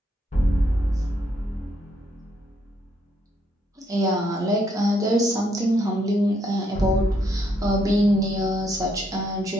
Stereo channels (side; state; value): both; normal; correlation 0.74